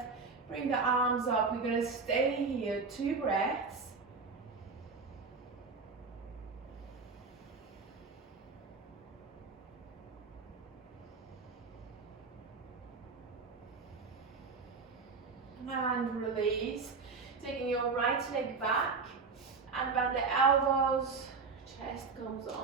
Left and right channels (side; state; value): left; quieter; 4.6 dB